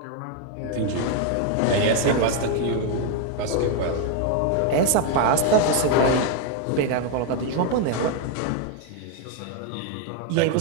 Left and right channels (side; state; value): both; different; correlation 0.01